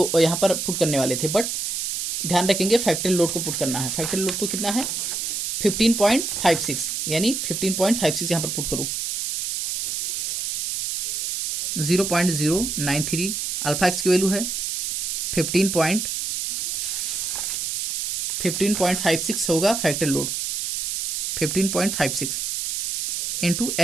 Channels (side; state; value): right; noise; hiss, 2 dB below the sound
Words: यहाँ पर पुट करने वाले थे, बट ध्यान रखेंगे फैक्टरी लोड को पुट करना है। फैक्टरी लोड तो कितना है 15.56 यानी 15.56 यहाँ पर पुट करूँ 0.093 अल्फा एक्स की वैल्यू है 15.56 होगा factor load 15.56 into